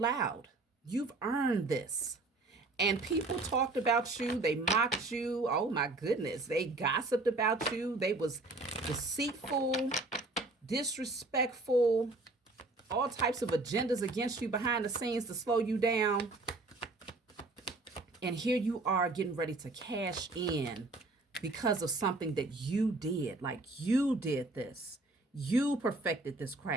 You've earned this. And people talked about you. They mocked you. Oh, my goodness. They gossiped about you. They was deceitful, disrespectful, all types of agendas against you behind the scenes to slow you down. And here you are getting ready to cash in because of something that you did. Like you did this. You perfected this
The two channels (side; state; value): left; quieter; 3.1 dB